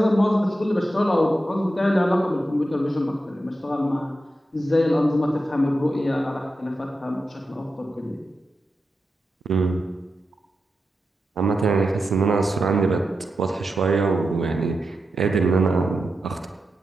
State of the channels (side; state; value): both; normal; correlation 0.89